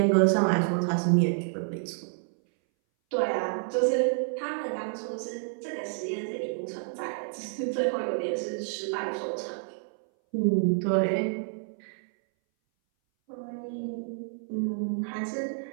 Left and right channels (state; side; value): silent; left; 59 dB below the other